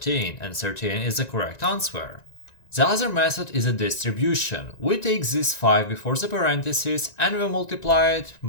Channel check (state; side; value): late; right; 1.9 ms